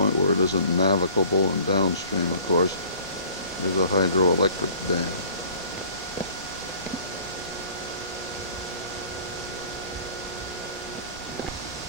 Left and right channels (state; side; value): inverted; both; correlation -0.49